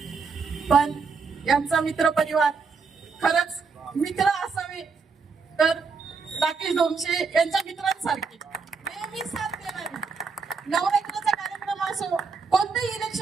पण यांचा मित्र परिवार, खरंच मित्र असावे तर राकेश ढोमसे यांच्या मित्रांसारखे नेहमी साथ देणारे. नवरात्राचा कार्यक्रम असो, कोणतेही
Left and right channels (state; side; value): quieter; left; 5.0 dB